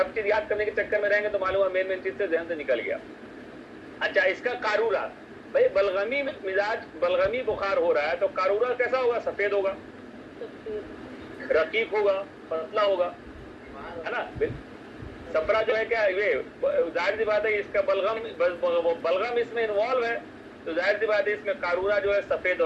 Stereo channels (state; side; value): identical; both; correlation 1.00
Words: چیز یاد کرنے کے چکر میں رہیں گے تو معلوم ہے مین چیز سے ذہن سے نکل گیا. اچھا اس کا قارورہ، بھائی بلغمی مزاج بلغمی بخار ہو رہا ہے تو قارورہ کیسا ہوگا؟ سفید ہوگا، رقیق ہوگا، پتلا ہوگا ہے نا. صفرا جو ہے کیا یہ ظاہر سی بات ہے اس کا بلغم اس میں انوالو ہے تو ظاہر سی بات ہے اس میں قارورہ جو ہے سفید